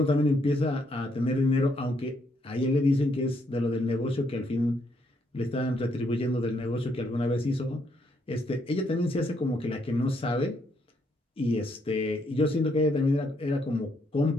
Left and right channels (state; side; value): normal; both; correlation 0.73